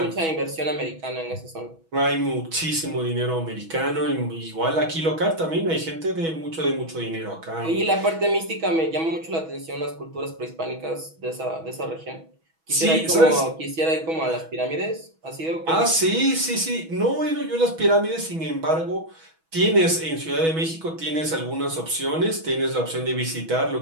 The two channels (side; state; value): left; late; 6.2 ms